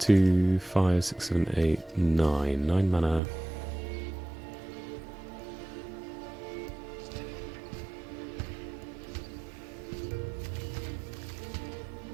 5, 6, 7, 8, 9. 9 mana.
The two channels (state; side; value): drops out; left; at 3.2 s